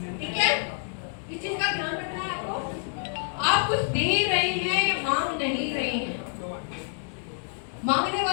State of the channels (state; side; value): silent; right; 60 dB below the other